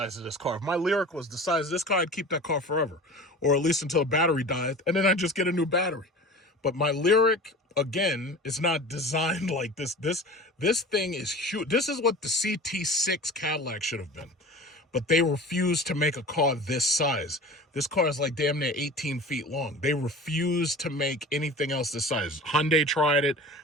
of this car. If my Lyric was the size of this car, I'd keep that car forever, or at least until the battery died, and then I'd just get a new battery. But my Lyric, again, is not designed like this. This thing is huge. This is what the CT6 Cadillac should have been. But they refused to make a car this size. This car is like damn near 18 feet long. They refused to make anything else this size. Hyundai tried it.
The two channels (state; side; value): normal; both; correlation 0.37